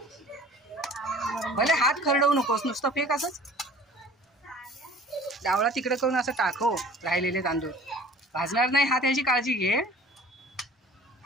भले हात खरडवू नकोस नुसतं फेक असंच डावळा तिकडे करून असं टाकव राहिलेले तांदूळ भाजणार नाही हात याची काळजी घे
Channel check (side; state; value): both; normal; correlation 0.47